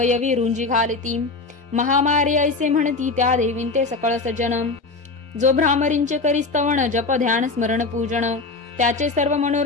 रुंजी घालती. महामारी ऐसे म्हणती त्या देवींते सकळ सज्जन. जो भ्रामरींचे करी स्तवन जप ध्यान स्मरण पूजन. त्याचे सर्व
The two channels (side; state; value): right; quieter; 3.8 dB